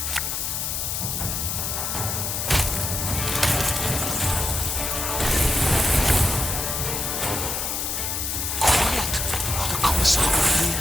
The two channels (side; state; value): left; noise; hiss, 2 dB below the sound